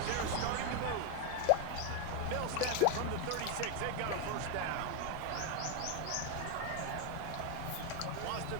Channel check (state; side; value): different; both; correlation 0.01